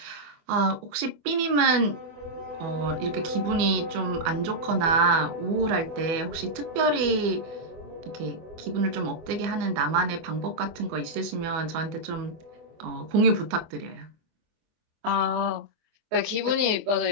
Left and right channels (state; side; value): late; left; 24 ms